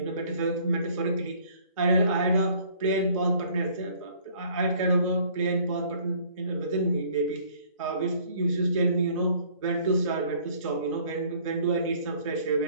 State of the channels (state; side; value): inverted; both; correlation -0.57